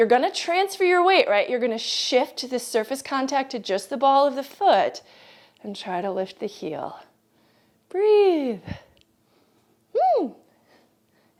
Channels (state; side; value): identical; both; correlation 1.00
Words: going to transfer your weight, right, you're going to shift the surface contact to just the ball of the foot and try to lift the heel. Breathe.